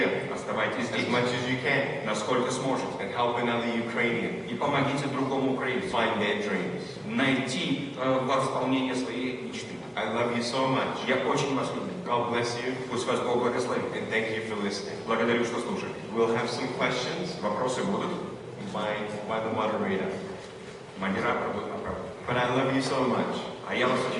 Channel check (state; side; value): identical; both; correlation 1.00